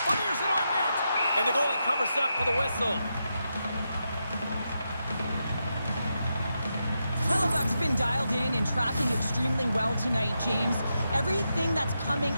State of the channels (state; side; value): inverted; both; correlation -0.86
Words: Fires it on net. And the goalie covers up for the whistle. Hellebuck's been dialed in and tracking extremely well tonight, James. Everything that's coming